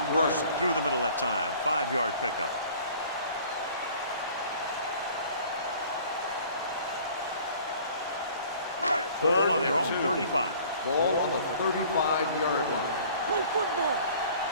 burst through the middle that time. 5-yard pickup. Ball on their own 35. Ball on the 35-yard line. Play football.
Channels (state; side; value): inverted; both; correlation -0.50